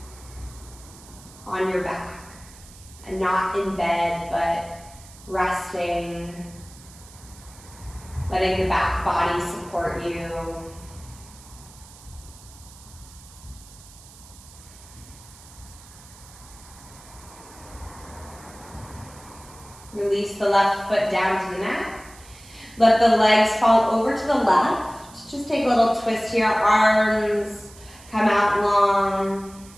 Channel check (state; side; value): noise; right; hiss, 21 dB below the sound